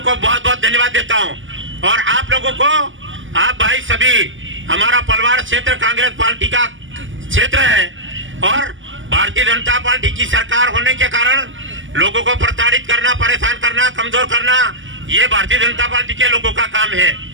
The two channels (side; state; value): left; late; 0.56 ms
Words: बहुत बहुत धन्यवाद देता हूं। और आप लोगों को, आप भाई सभी, हमारा पलवाड़ क्षेत्र कांग्रेस पार्टी का क्षेत्र है और भारतीय जनता पार्टी की सरकार होने के कारण लोगों को प्रताड़ित करना, परेशान करना, कमजोर करना, ये भारतीय जनता पार्टी के लोगों का काम है।